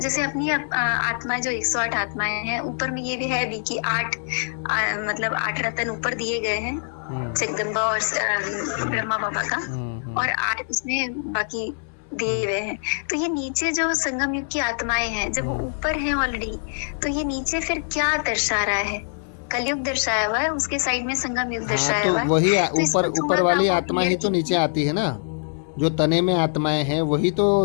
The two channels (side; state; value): right; silent; digital silence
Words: अपनी आत्मा जो 108 आत्माएं हैं, ऊपर में ये भी है भी कि 8 मतलब 8 रतन ऊपर दिए गए हैं जगदम्बा और ब्रह्मा बाबा का, और 8 उसमें बाकी दिए हुए हैं। तो ये नीचे जो संगम युग की आत्माएं हैं, जब वो ऊपर हैं ऑलरेडी, तो ये नीचे फिर क्या दर्शा रहा है? कलयुग दर्शाया हुआ है, उसके साइड में संगम युग दर्शाया हुआ है। वही तो ऊपर वाली आत्मा ही तो नीचे आती है ना। जो तने में आत्माएं हैं वही तो